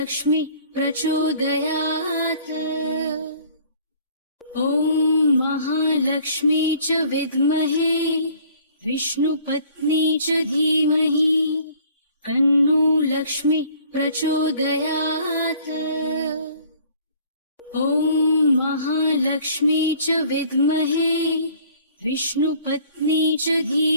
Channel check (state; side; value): inverted; both; correlation -0.54